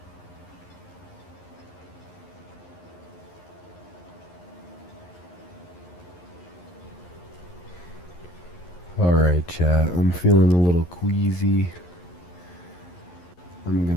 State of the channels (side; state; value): right; late; 11 ms